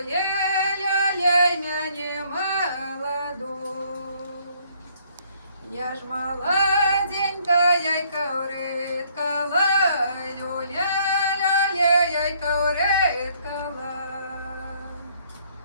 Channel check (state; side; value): inverted; both; correlation -0.64